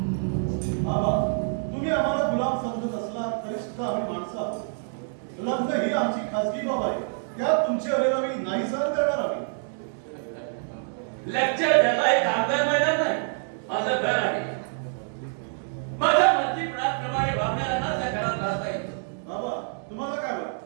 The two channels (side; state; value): left; silent; digital silence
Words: बाबा, तुम्ही आम्हाला गुलाम समजत असला तरी सुद्धा आम्ही माणसं आहोत. लग्न ही आमची खासगी बाब आहे. त्यात तुमची अरेरावी नाही सहन करणार आम्ही. लेक्चर द्यायला एक कामगार मैदान नाही, माझं घर आहे. माझ्या मर्जीप्रमाणे वागणाऱ्यांनाच या घरात राहता येतं. बाबा, तुम्हाला काय